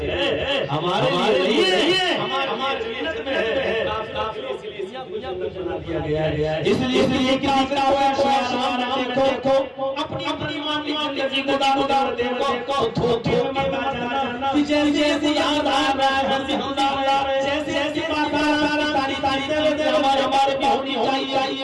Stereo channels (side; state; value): both; identical; correlation 1.00